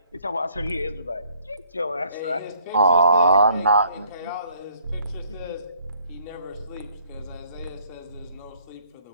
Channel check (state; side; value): inverted; both; correlation -0.63